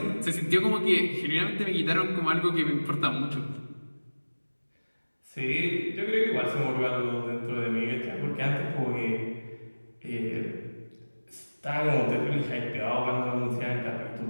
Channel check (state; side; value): inverted; both; correlation -1.00